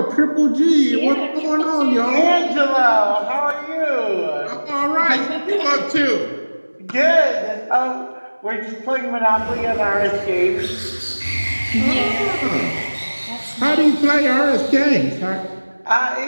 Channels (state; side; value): inverted; both; correlation -1.00